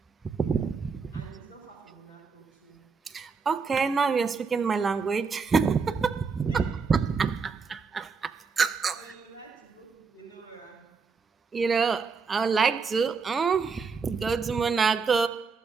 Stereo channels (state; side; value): quieter; left; 5.2 dB